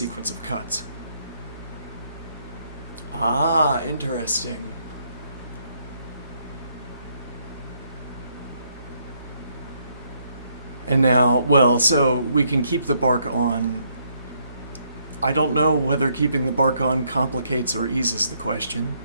of cuts. Ah, interesting. And now, well, so we can keep the bark on. I don't know whether keeping the bark on complicates or eases the question.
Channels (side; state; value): both; inverted; correlation -0.72